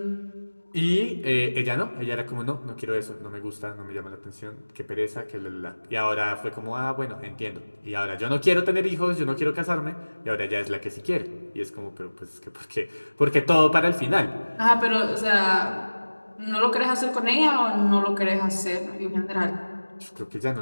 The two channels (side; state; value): both; inverted; correlation -1.00